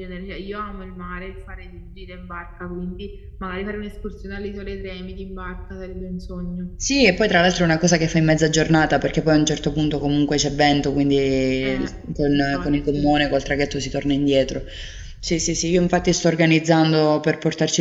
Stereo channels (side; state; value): both; identical; correlation 1.00